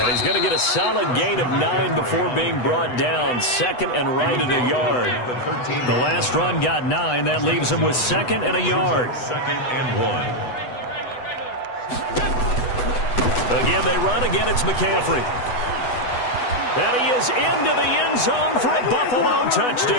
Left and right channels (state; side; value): late; right; 8.1 ms